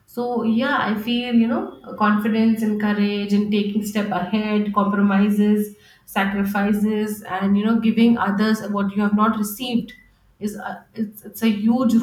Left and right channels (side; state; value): both; identical; correlation 1.00